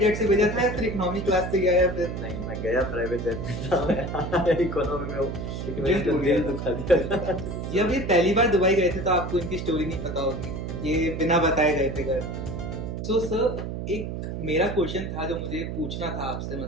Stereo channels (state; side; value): noise; right; hum, 5 dB below the sound